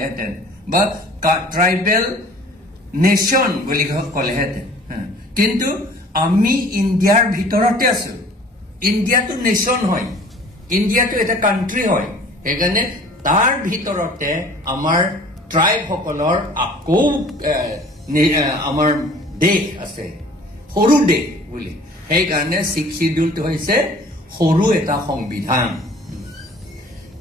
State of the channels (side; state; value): both; normal; correlation 0.49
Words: বা ট্ৰাইবেল নেশ্যন বুলি ক'লেহেঁতেন. কিন্তু আমি ইণ্ডিয়াৰ ভিতৰতে আছো. ইণ্ডিয়াটো নেশ্যন হয়, ইণ্ডিয়াটো এটা কান্ট্ৰি হয়. সেইকাৰণে তাৰ ভিতৰতে আমাৰ ট্ৰাইব সকলৰ আকৌ আমাৰ দেশ আছে, সৰু দেশ বুলি. সেইকাৰণে ছিক্স শিডিউলটো হৈছে সৰু এটা সংবিধান.